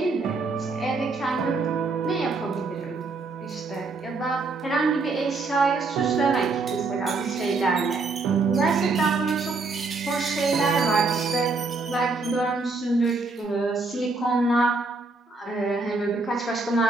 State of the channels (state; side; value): quieter; left; 3.8 dB